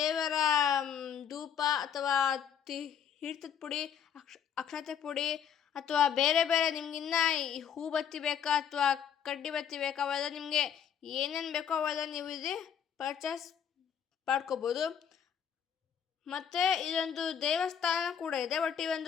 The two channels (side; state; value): right; quieter; 8.3 dB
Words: ಧೂಪ, ಅಥವಾ ತೀರ್ಥದ ಪುಡಿ, ಅಕ್ಷತೆ ಪುಡಿ, ಅಥವಾ ಬೇರೆ ಬೇರೆ ನಿಮ್ಗಿನ್ನ ಹೂ ಬತ್ತಿ ಬೇಕಾ ಅಥವಾ ಕಡ್ಡಿ ಬತ್ತಿ ಬೇಕಾ, ಅವೆಲ್ಲ ನಿಮಗೆ ಏನೇನು ಬೇಕೋ ಅವೆಲ್ಲ ನೀವು ಇಲ್ಲಿ ಪರ್ಚೇಸ್ ಮಾಡ್ಕೋಬೋದು. ಮತ್ತು ಇದೊಂದು ದೇವಸ್ಥಾನ ಕೂಡ ಇದೆ. ಬಟ್ ಈ